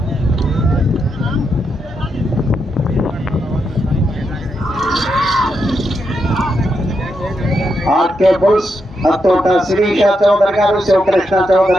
ఆర్కే బుల్స్, అత్తోట శిరీష చౌదరి గారు, శివకృష్ణ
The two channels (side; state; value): both; normal; correlation 0.83